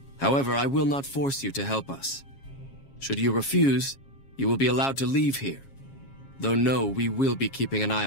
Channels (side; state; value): right; late; 7.3 ms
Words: However, I will not force you to help us. Should you refuse, you will be allowed to leave here. Though no, we will be keeping an eye